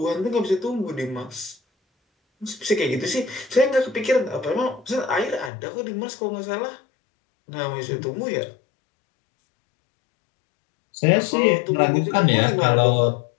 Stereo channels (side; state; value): right; drops out; at 5.5 s